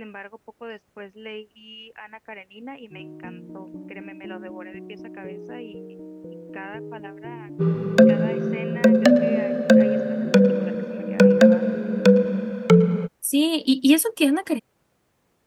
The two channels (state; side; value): identical; both; correlation 1.00